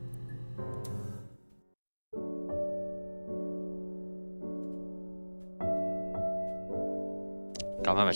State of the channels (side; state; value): both; inverted; correlation -1.00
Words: 咁係咪